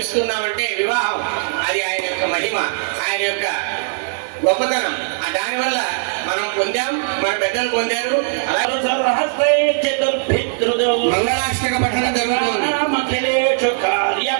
వివాహం అది ఆయన యొక్క మహిమ, ఆయన యొక్క గొప్పతనం. దానివల్ల మనం పొందాం, మన పెద్దలు పొందారు. అలాగే మంగళాష్టక పఠనం జరుగుతుంది.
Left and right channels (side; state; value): left; silent; digital silence